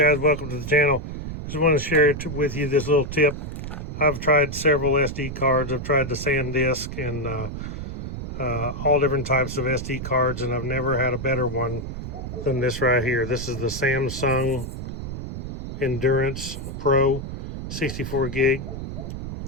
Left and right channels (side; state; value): right; noise; rumble, 7 dB below the sound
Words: welcome to the channel. Just want to share with you this little tip. I've tried several SD cards. I've tried the SanDisk and all different types of SD cards, and I've never had a better one than this right here. This is the Samsung Endurance Pro 64 gig